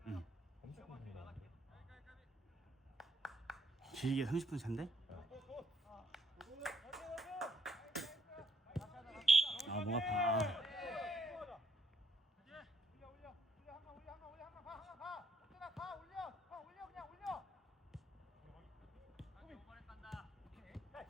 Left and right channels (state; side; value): normal; both; correlation 0.72